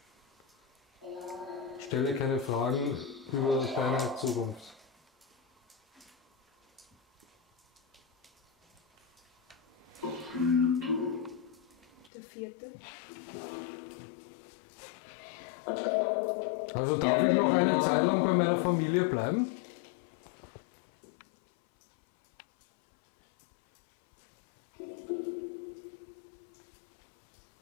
Stelle keine Fragen über deine Zukunft. Der vierte. Also darf ich noch eine Zeit lang bei meiner Familie bleiben?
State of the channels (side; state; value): right; drops out; at 12.1 s